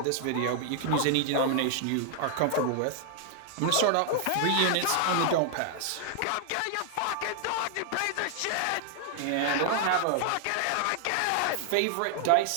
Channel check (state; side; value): different; both; correlation 0.00